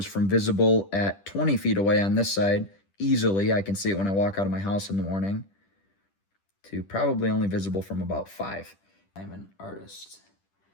from visible at 20 feet away on this side, easily, I can see it when I walk out of my house in the morning, to probably only visible from about 5. I'm an artist,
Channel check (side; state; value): right; late; 10 ms